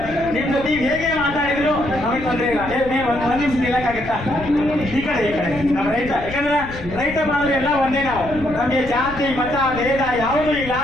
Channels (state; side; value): noise; left; rumble, 12 dB below the sound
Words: ನಿಮ್ ಜೊತೆ ಹೇಗೆ ಮಾತಾಡಿದ್ರು ನಮಗೆ ತೊಂದರೆ ಇಲ್ಲ. ಒಂದ್ ನಿಮಿಷ ನಿಲ್ಲಕ್ಕಾಗತ್ತಾ? ಈ ಕಡೆ ನಮ್ಮ ರೈತ, ಯಾಕಂದ್ರೆ ರೈತ ಬಾಂಧವರು ಎಲ್ಲ ಒಂದೇ. ನಾವು ನಮಗೆ ಜಾತಿ ಮತ ಭೇದ ಯಾವುದೂ ಇಲ್ಲ.